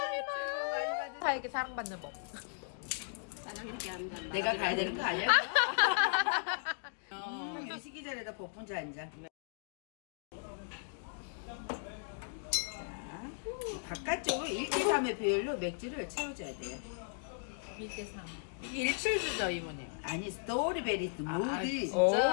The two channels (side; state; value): right; silent; digital silence